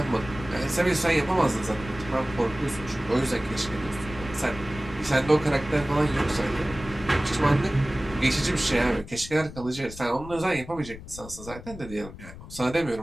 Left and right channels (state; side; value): noise; left; rumble, 14 dB below the sound